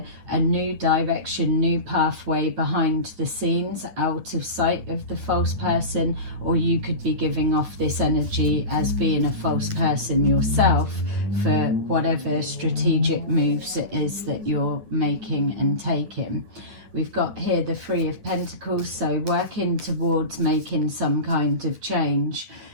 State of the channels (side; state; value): left; late; 9.9 ms